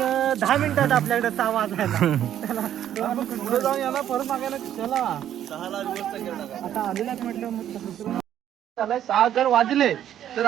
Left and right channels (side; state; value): left; quieter; 10.8 dB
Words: 10 मिनिटात आपल्याकडे 6 वाजायला. पुढे जाऊन याला परत मागायला. चला 6ला आता आलेलाच म्हटलं. मग 6 जर वाजले तर